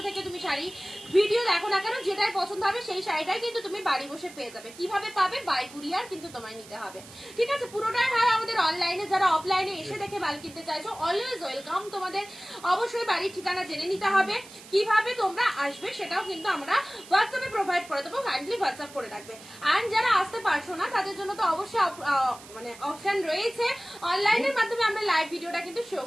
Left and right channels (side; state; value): right; noise; hiss, 18 dB below the sound